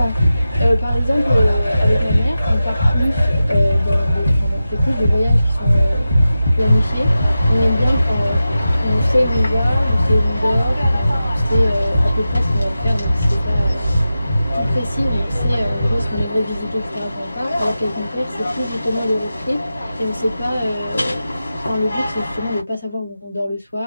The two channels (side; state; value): both; inverted; correlation -0.93